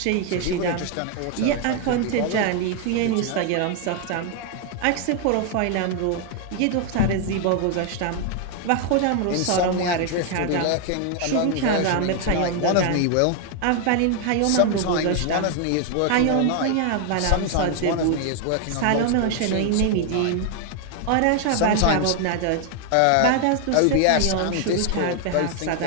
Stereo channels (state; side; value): different; both; correlation 0.00